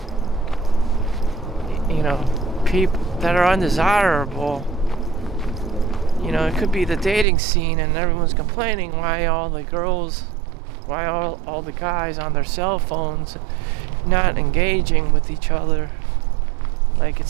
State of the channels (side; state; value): left; drops out; at 7.2 s